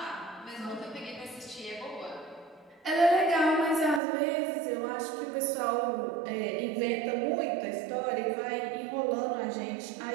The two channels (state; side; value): drops out; left; at 4.0 s